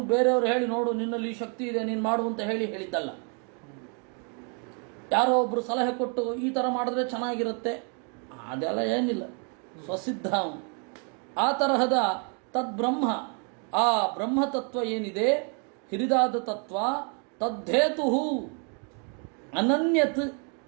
ಬೇರೆಯವರು ಹೇಳಿ ನೋಡು ನಿನ್ನಲ್ಲಿ ಈ ಶಕ್ತಿ ಇದೆ ನೀನು ಮಾಡು ಅಂತ ಹೇಳಿದ್ದಲ್ಲ. ಯಾರೋ ಒಬ್ಬರು ಸಲಹೆ ಕೊಟ್ಟು ಈ ಥರ ಮಾಡಿದ್ರೆ ಚೆನ್ನಾಗಿರುತ್ತೆ ಅದೆಲ್ಲ ಏನಿಲ್ಲ, ಸ್ವಸಿದ್ಧ ಅವನು. ಆ ತರಹದ ತದ್ಬ್ರಹ್ಮ, ಆ ಬ್ರಹ್ಮತತ್ವ ಏನಿದೆ ಹಿರಿದಾದ ತತ್ವ, ತದ್ದೇತು ಅನನ್ಯತ್,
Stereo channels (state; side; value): quieter; left; 38.6 dB